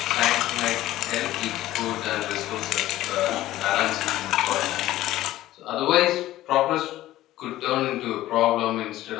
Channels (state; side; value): quieter; right; 15.0 dB